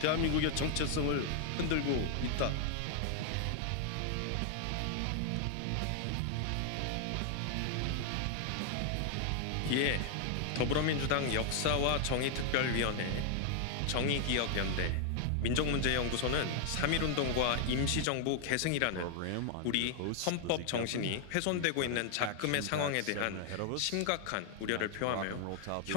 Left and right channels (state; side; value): different; both; correlation 0.00